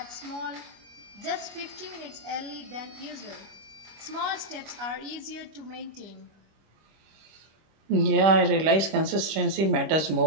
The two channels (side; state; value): left; late; 26 ms